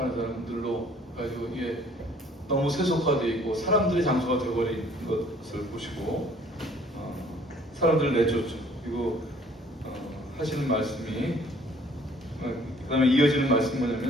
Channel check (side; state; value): both; normal; correlation 0.57